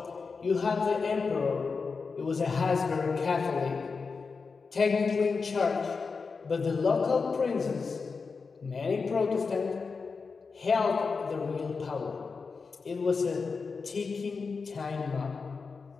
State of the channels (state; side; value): quieter; right; 4.8 dB